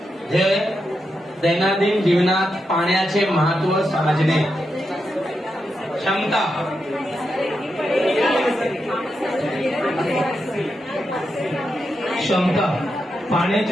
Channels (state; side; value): normal; both; correlation 0.86